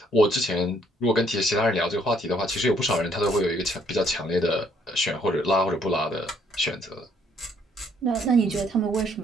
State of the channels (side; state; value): both; normal; correlation 0.67